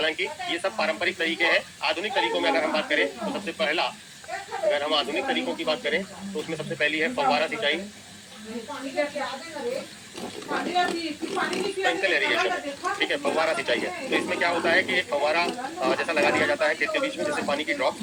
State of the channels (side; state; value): both; identical; correlation 1.00